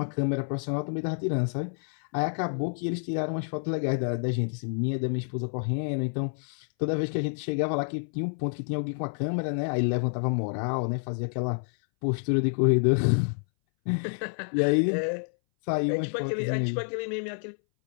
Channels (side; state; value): right; silent; 59 dB below the other